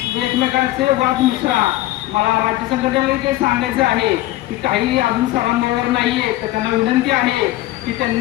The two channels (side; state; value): right; quieter; 16.2 dB